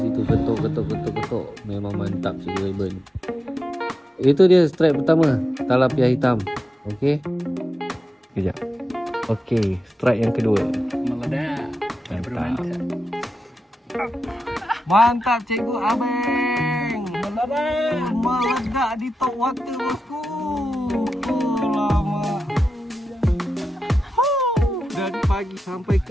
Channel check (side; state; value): both; normal; correlation 0.90